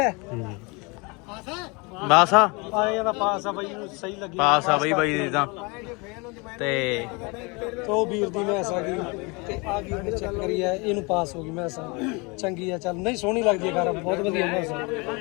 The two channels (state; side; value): quieter; right; 28.6 dB